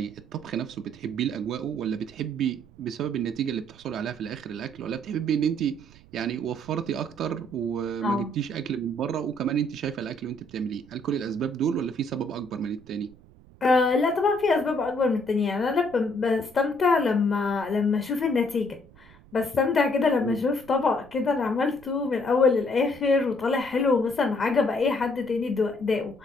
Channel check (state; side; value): noise; right; rumble, 24 dB below the sound